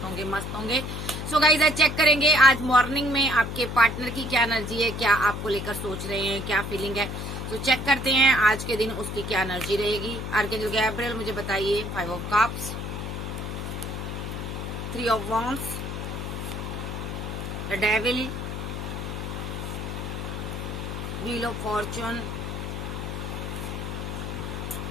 होंगे, मस्त होंगे। सो गाइज आज चेक करेंगे आज मॉर्निंग में आपके पार्टनर की क्या एनर्जी है, क्या आपको लेकर सोच रहे हैं, क्या फीलिंग है। तो चेक करते हैं आज के दिन उसकी क्या एनर्जी रहेगी। आर्कएंजल गैब्रिएल मुझे बताइए। 5 of cups, 3 of wands, the devil, wheel of Fortune,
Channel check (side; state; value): left; noise; hum, 5 dB below the sound